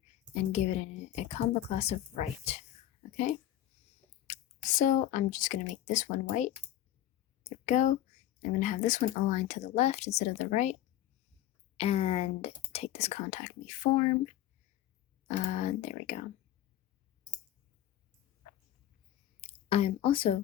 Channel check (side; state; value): right; quieter; 12.6 dB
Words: and give it a combo class of right, okay? So I'm just going to make this one white. There we go. I'm going to have this one aligned to the left instead of the right, and take this contact me form. There we go. I'm